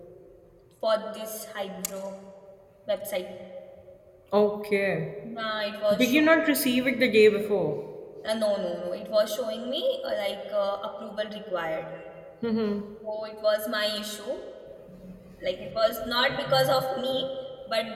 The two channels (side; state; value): both; identical; correlation 1.00